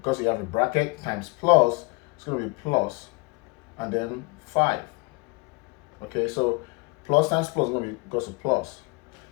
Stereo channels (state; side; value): quieter; right; 26.9 dB